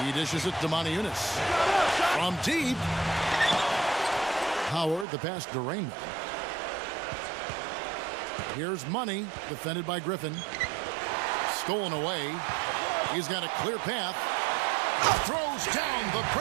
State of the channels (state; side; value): drops out; left; at 5.1 s